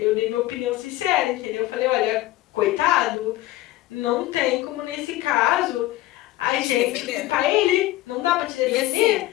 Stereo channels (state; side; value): quieter; right; 16.6 dB